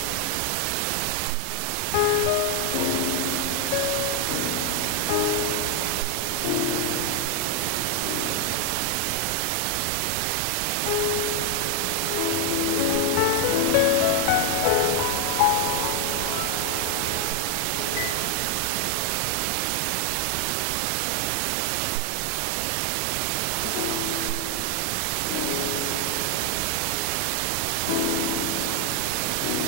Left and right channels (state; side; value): different; both; correlation 0.00